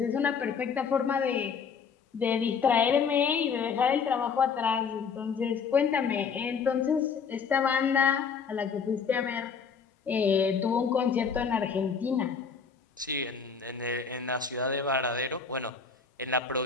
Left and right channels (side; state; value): right; quieter; 6.0 dB